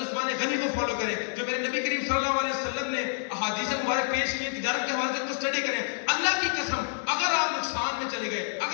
غنی کو فالو کریں، جو میرے نبی کریم صلی اللہ علیہ وسلم نے احادیث مبارک پیش کی تجارت کے حوالے سے ان کو اسٹڈی کریں۔ اللہ کی قسم اگر آپ نقصان میں چلے گئے،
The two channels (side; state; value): right; silent; digital silence